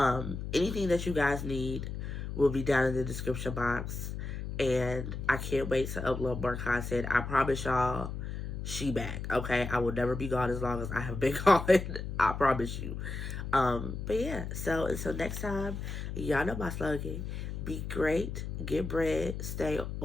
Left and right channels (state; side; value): noise; left; hum, 6 dB below the sound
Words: anything that you guys need will be down in the description box. And I can't wait to upload more content. I promise y'all, she back, okay? I will never be gone as long as I have been gone. I promise you. But yeah, so until next time, y'all know my slogan. Be great, get bread, stay